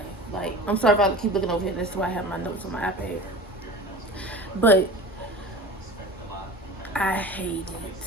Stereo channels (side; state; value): both; normal; correlation 0.36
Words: Like, I'm sorry if I keep looking over here. That's why I have my notes on my iPad. But I hate